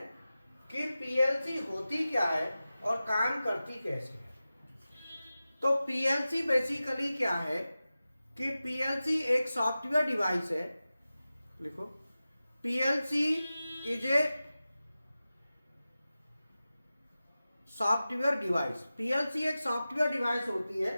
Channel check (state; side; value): inverted; both; correlation -0.95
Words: कि पीएलसी होती क्या है और काम करती कैसे है। तो पीएलसी बेसिकली क्या है कि पीएलसी एक सॉफ्टवेयर डिवाइस है। लिखो, PLC is a software device. PLC एक सॉफ्टवेयर डिवाइस होती है